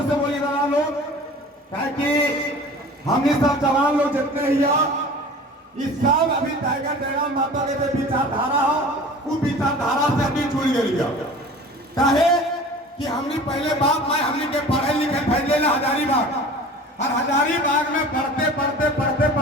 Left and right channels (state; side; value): normal; both; correlation 0.41